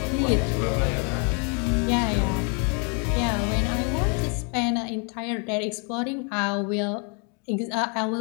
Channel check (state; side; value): quieter; right; 37.3 dB